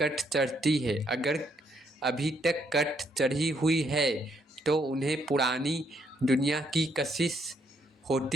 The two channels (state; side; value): normal; both; correlation 0.72